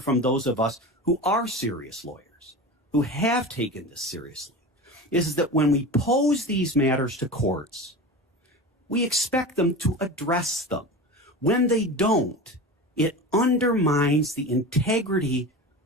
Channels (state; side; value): normal; both; correlation 0.29